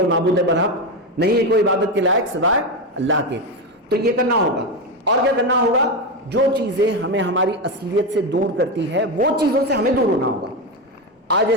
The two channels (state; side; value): normal; both; correlation 0.13